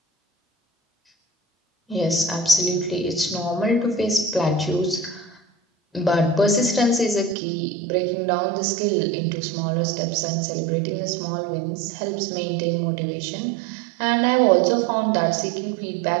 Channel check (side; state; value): left; drops out; at 7.4 s